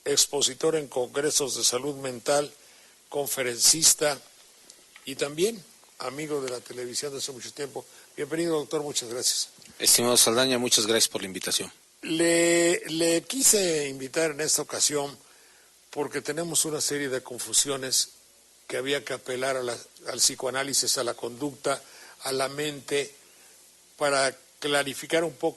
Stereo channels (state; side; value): identical; both; correlation 1.00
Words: expositor en congresos de salud mental, conferencista y también amigo de la televisión de hace mucho tiempo. Bienvenido, doctor, muchas gracias. Estimado Saldaña, muchas gracias por la invitación. Le quise invitar en esta ocasión porque tenemos una serie de confusiones que había que apelar al psicoanálisis, a la conducta, a la mente, para clarificar un